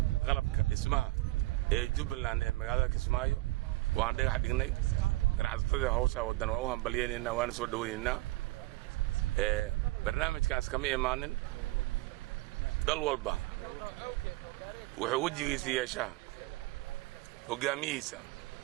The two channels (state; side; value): quieter; left; 19.5 dB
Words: qalabka dhismaha ee Jubbaland ee magaalada Kismaayo waan dhagax dhignay ganacsatada hawsha wadan waa u hambalyeynaa waan soo dhaweynaynaa barnaamijkaas kama imaanin dal walba wuxuu wajigiisa yeeshaa hogaamiyihiisa